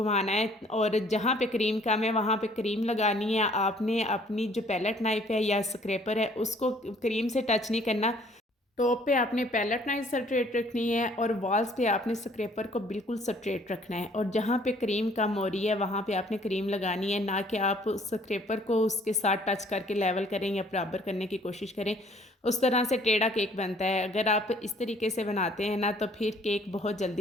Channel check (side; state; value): both; normal; correlation 0.59